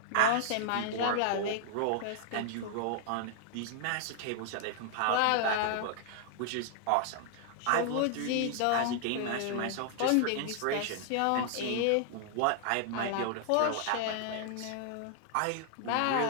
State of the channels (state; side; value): different; both; correlation 0.00